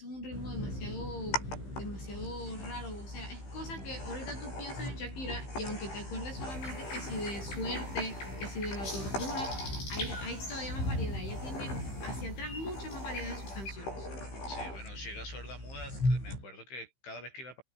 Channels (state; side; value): late; right; 15 ms